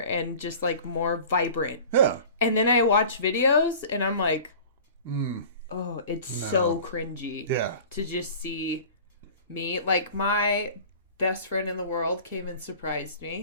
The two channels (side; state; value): both; inverted; correlation -0.42